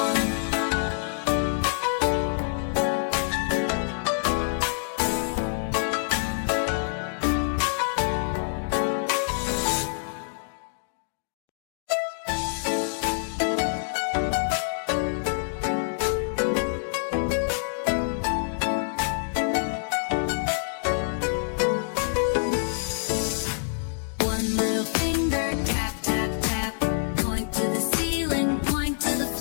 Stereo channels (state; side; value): silent; right; digital silence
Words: One little finger, tap, tap, tap, point to the ceiling, point to the